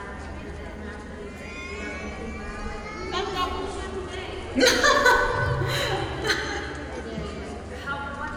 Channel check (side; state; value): both; identical; correlation 1.00